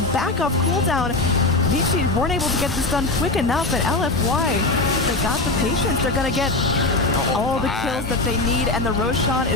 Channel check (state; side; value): quieter; right; 3.1 dB